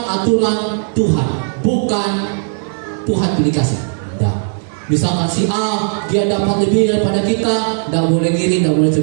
aturan Tuhan, bukan Tuhan pilih kasih. Nah, misalkan si A dia dapat lebih daripada kita, tidak boleh iri, tidak boleh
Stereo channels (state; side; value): silent; left; 63 dB below the other